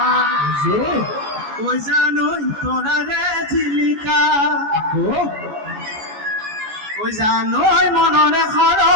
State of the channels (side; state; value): left; late; 14 ms